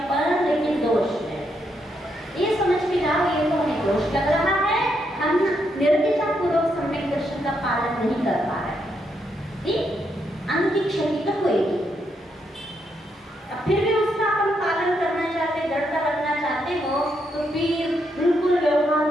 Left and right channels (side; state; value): both; normal; correlation 0.78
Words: अपन, लेकिन दोष है। ये समझ के जाओ, ये तो हमें दोष लग रहा है, हम निर्दिष्ट पूर्वक सम्यक दर्शन का पालन नहीं कर पा रहे हैं। ठीक, अंग की क्षति तो होगी। अब फिर भी उसका अपन पालन करना चाहते, दृढ़ता रखना चाहते हो, तो फिर बिल्कुल व्यवहार